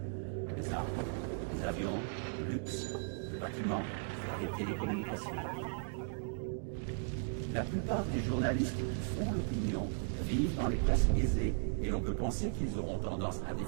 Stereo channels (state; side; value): silent; left; digital silence